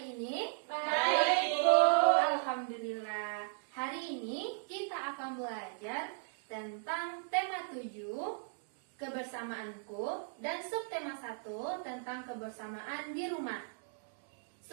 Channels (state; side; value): silent; left; 54 dB below the other